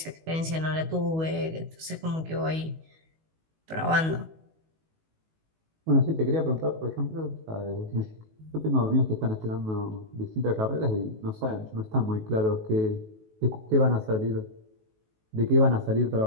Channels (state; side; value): late; left; 19 ms